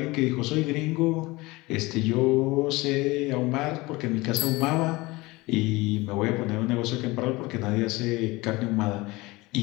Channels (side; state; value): right; quieter; 21.9 dB